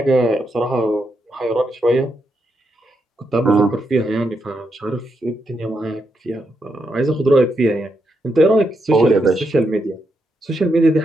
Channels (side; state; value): both; normal; correlation 0.82